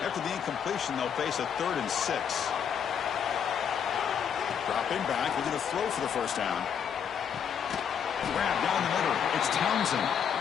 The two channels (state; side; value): quieter; right; 7.8 dB